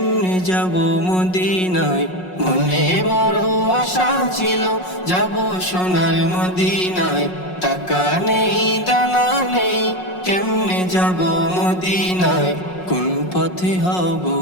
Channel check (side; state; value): right; late; 5.5 ms